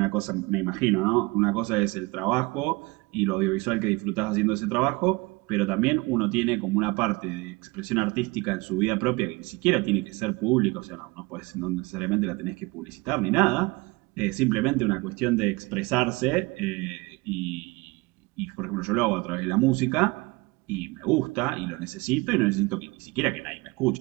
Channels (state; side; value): quieter; left; 24.4 dB